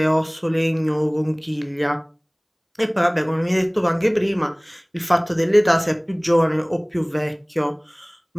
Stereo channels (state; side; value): identical; both; correlation 1.00